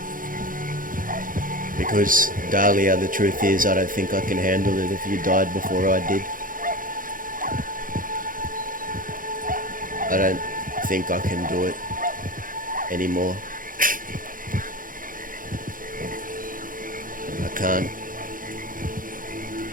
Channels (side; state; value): left; late; 0.40 ms